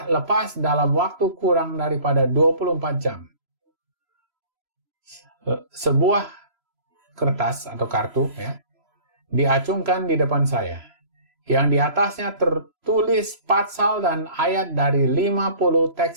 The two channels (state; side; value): late; left; 3.0 ms